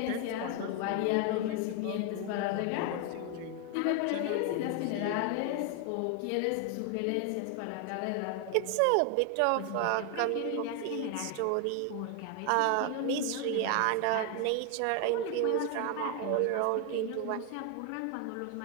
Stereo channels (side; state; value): both; different; correlation 0.01